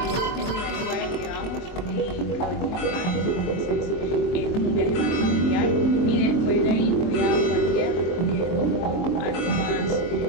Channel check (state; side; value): late; right; 23 ms